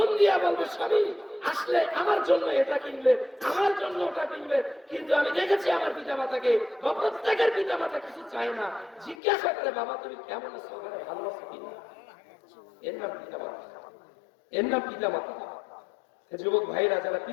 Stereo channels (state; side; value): drops out; right; at 9.2 s